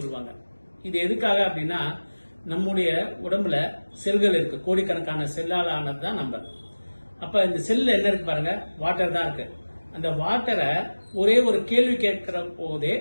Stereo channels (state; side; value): inverted; both; correlation -1.00